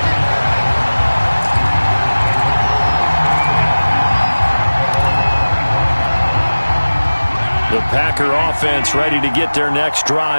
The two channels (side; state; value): both; inverted; correlation -1.00